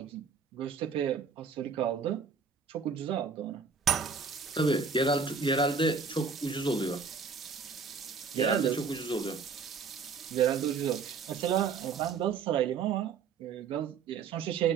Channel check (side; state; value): left; quieter; 5.4 dB